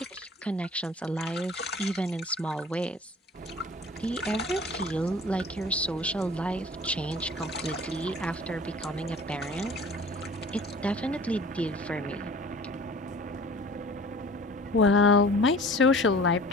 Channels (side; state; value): both; normal; correlation 0.45